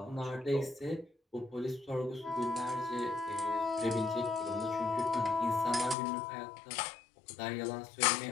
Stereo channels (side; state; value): right; drops out; at 6.0 s